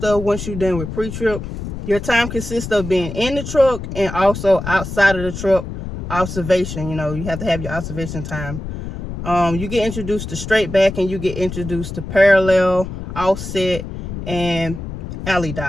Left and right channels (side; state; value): left; noise; rumble, 8 dB below the sound